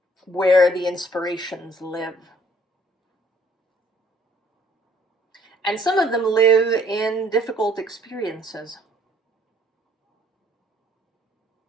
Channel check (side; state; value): both; normal; correlation 0.61